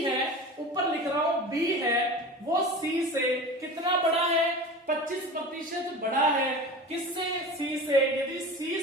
है, ऊपर लिख रहा हूं बी है वो सी से कितना बड़ा है, 25% बड़ा है। किससे, सी से। यदि सी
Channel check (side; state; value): both; normal; correlation 0.34